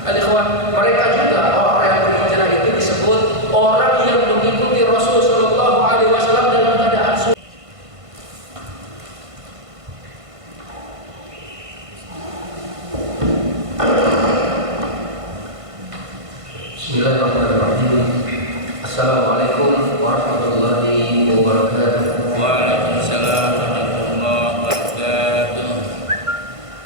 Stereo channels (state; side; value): late; left; 1.5 ms